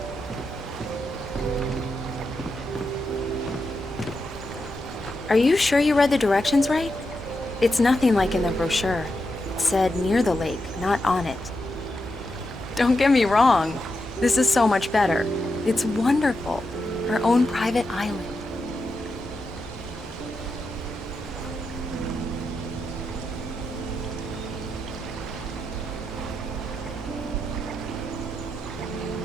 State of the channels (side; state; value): both; normal; correlation 0.86